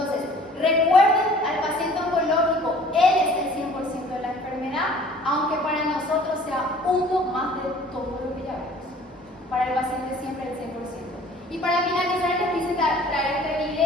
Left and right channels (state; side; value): normal; both; correlation 0.51